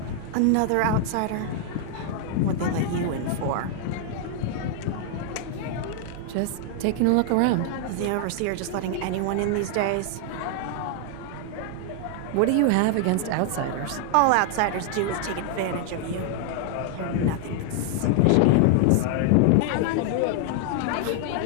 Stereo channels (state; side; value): different; both; correlation 0.00